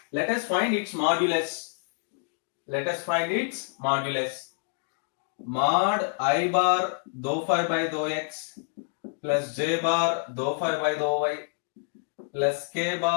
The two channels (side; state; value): right; silent; digital silence